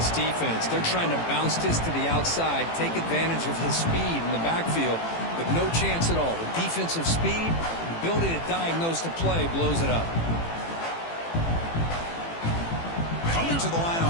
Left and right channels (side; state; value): right; late; 18 ms